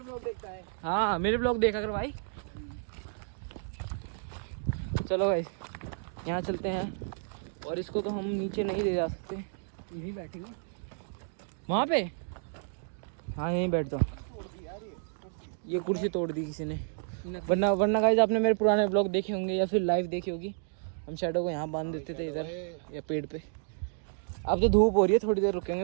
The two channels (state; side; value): silent; left; digital silence